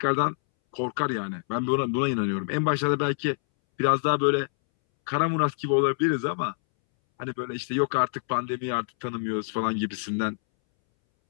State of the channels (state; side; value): silent; right; 61 dB below the other